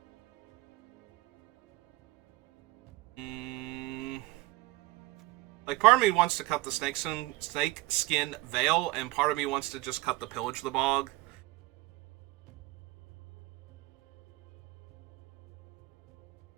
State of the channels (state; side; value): quieter; left; 20.6 dB